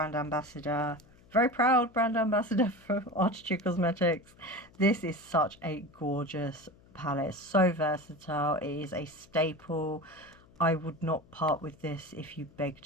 ambassador, very proud brand ambassador for Arttitude Cosmetics. This is such a gorgeous palette. It's so versatile. It is a staple. I would not part with this if you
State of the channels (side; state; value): left; noise; hum, 27 dB below the sound